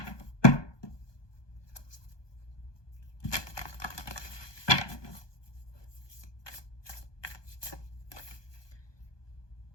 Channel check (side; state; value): right; late; 1.2 ms